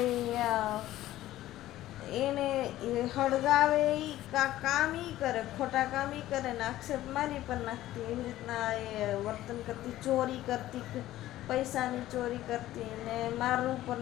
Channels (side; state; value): right; quieter; 14.7 dB